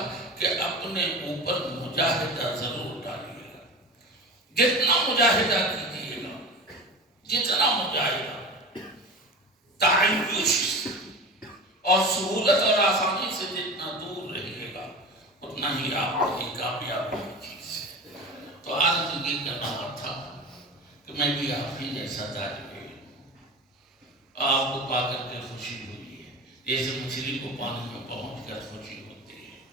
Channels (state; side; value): normal; both; correlation 0.31